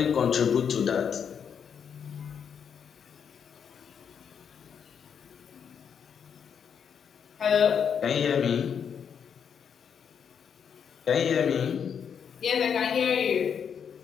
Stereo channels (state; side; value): quieter; right; 7.4 dB